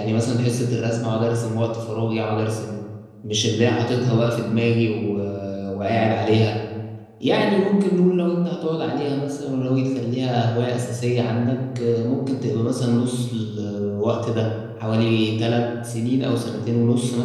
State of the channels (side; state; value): both; identical; correlation 1.00